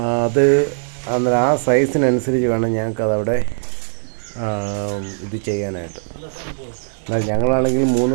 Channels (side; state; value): left; silent; 64 dB below the other